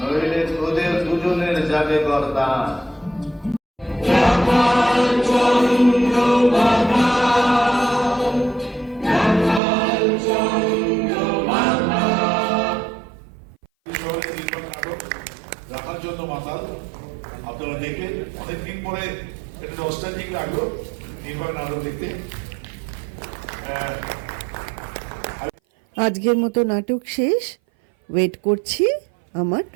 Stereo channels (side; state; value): left; drops out; at 9.6 s